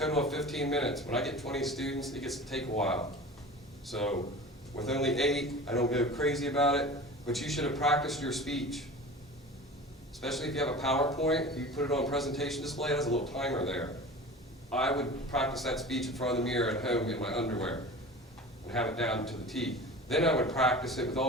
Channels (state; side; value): normal; both; correlation 0.36